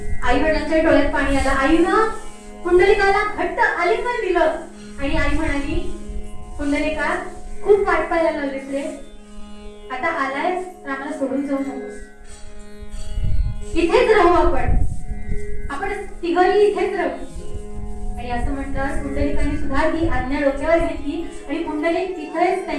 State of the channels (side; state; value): both; identical; correlation 1.00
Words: आई वडिलांच्या डोळ्यात पाणी आलं. आईनं पुंडलिकाला घट्ट आलिंगन दिलं आणि आई म्हणाली, पुंडलिका खूप वाट पाहायला लागलीस रे, आता आलायस तर आम्हाला सोडून जाऊ नकोस, इथेच राहू आपण तिघही इथेच राहू. आणि असं म्हणतात पुंडलिकाने सुद्धा ती आज्ञा डोक्यावर घेतली आणि पुंडलिक तिथेच